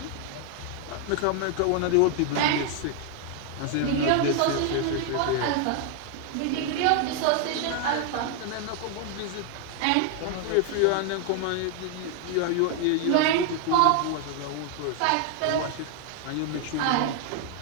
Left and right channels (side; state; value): both; different; correlation 0.00